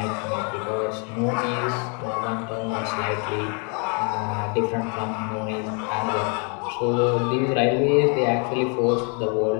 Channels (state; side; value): quieter; right; 37.1 dB